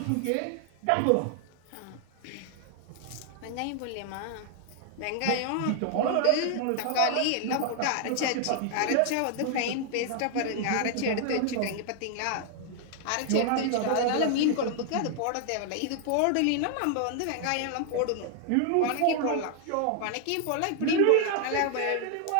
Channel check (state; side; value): different; both; correlation 0.00